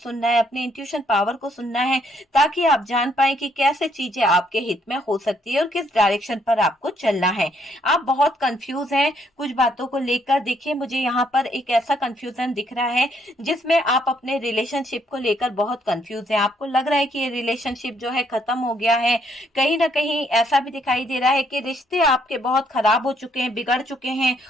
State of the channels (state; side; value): normal; both; correlation 0.70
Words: है, अपने इंट्यूशन पावर को सुनना है, ताकि आप जान पाए कि कैसे चीजें आपके हित में हो सकती है और किस डायरेक्शन पर आपको चलना है। आप बहुत कंफ्यूज हैं कुछ बातों को लेकर। देखिए, मुझे यहाँ पर एक ऐसा कंफ्यूजन दिख रहा है जिसमें आप अपने रिलेशनशिप को लेकर बहुत कंफ्यूज हैं। आपको लग रहा है कि ये रिलेशनशिप जो है खत्म हो गया है। कहीं ना कहीं ऐसा भी दिखाई दे रहा है कि रिश्ते आपके बहुत खराब हो चुके हैं, बिगड़ चुके हैं।